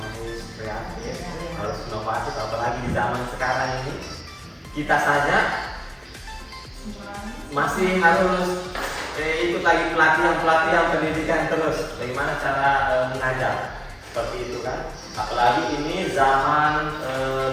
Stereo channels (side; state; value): both; identical; correlation 1.00